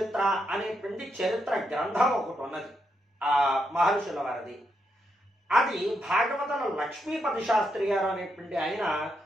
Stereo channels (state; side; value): normal; both; correlation 0.81